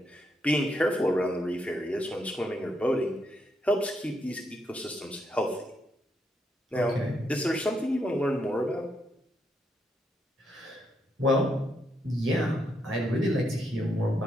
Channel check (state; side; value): normal; both; correlation 0.79